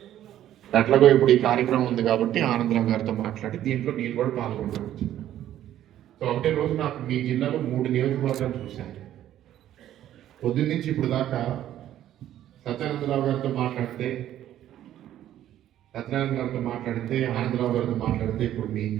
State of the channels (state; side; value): quieter; left; 12.1 dB